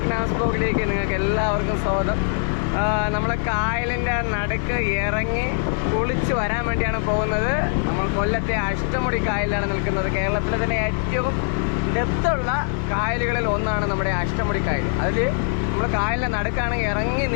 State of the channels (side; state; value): right; silent; 61 dB below the other